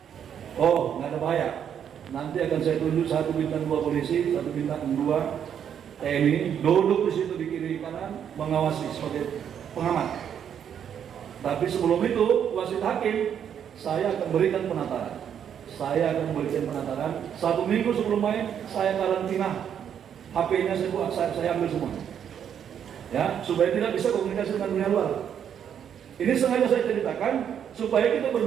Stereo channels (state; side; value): quieter; left; 8.7 dB